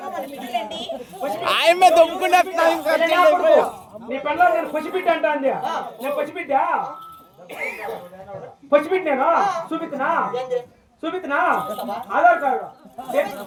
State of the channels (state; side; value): identical; both; correlation 1.00